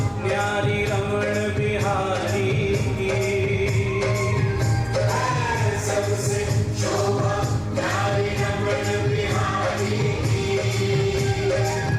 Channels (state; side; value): identical; both; correlation 1.00